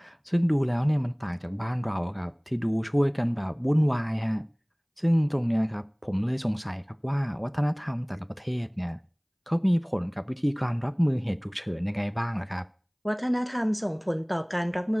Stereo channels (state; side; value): identical; both; correlation 1.00